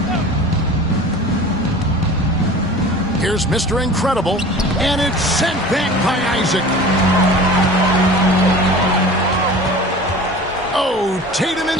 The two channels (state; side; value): normal; both; correlation 0.39